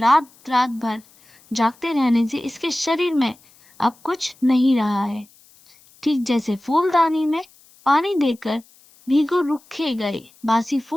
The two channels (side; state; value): left; noise; hiss, 29 dB below the sound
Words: रात भर जागते रहने से इसके शरीर में अब कुछ नहीं रहा है। ठीक जैसे फूलदानी में पानी देकर भीगो रुखे गए बासी